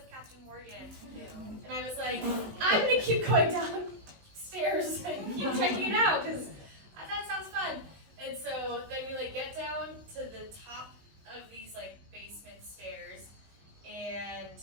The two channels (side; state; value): left; late; 18 ms